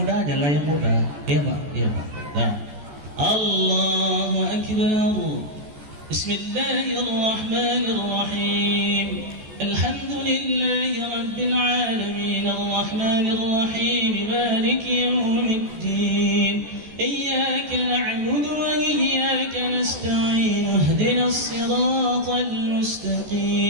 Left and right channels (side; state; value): left; late; 14 ms